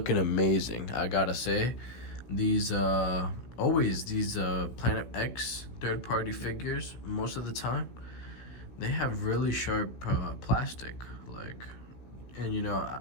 amazing. I gotta say, these Planet X third-party figures, most of the time, they have really sharp plastic, and you know,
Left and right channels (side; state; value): right; late; 16 ms